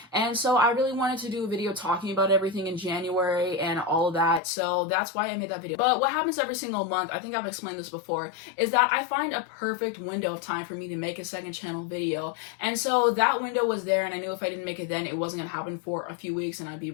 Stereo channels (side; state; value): right; drops out; at 4.4 s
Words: and so I really wanted to do a video talking about everything in January and all of that, so that's why I made that video. But what happens every single month, I think I've explained this before, is that I find a perfect window of time for me to make a second channel video, and so that window was there, and I knew if I didn't make it then, it wasn't gonna happen for a few weeks, and I'd be